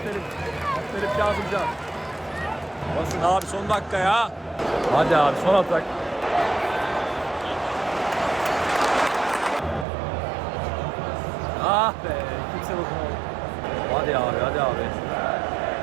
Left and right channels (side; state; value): left; drops out; at 9.9 s